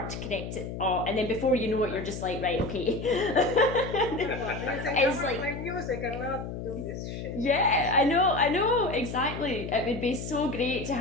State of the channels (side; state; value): left; noise; hum, 7 dB below the sound